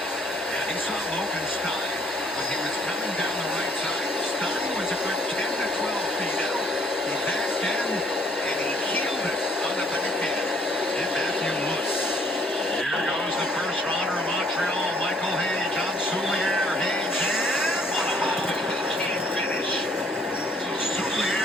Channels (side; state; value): both; normal; correlation 0.63